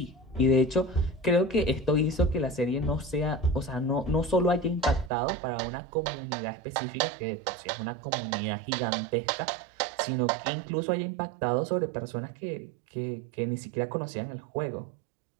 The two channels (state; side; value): drops out; left; at 5.1 s